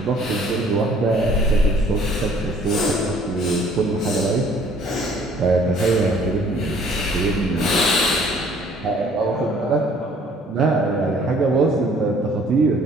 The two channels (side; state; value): both; normal; correlation 0.57